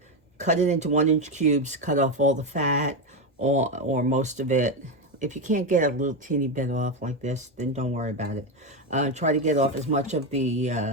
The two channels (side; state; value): both; normal; correlation 0.11